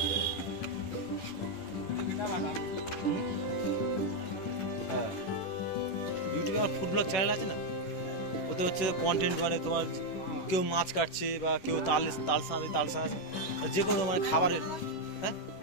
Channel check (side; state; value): right; late; 11 ms